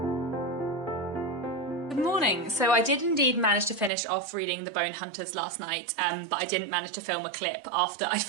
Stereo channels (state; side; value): drops out; left; at 3.9 s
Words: So I did indeed manage to finish off reading The Bone Hunters last night, but I didn't manage to film a clip after I